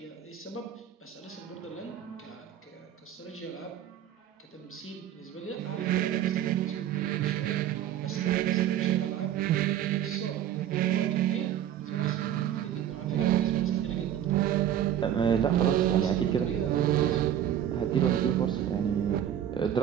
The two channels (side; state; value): left; quieter; 10.6 dB